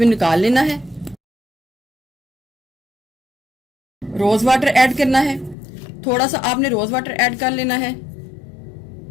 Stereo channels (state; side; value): drops out; right; at 5.6 s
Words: निकाल लेना है। रोज वाटर ऐड करना है, थोड़ा सा आपने रोज वाटर ऐड कर लेना है।